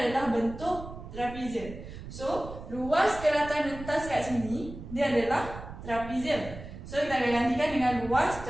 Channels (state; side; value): noise; right; rumble, 12 dB below the sound